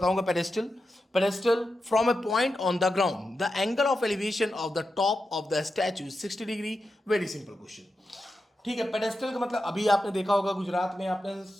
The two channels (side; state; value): both; normal; correlation 0.89